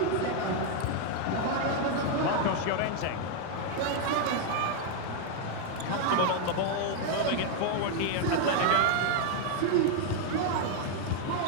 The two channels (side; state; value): both; different; correlation 0.00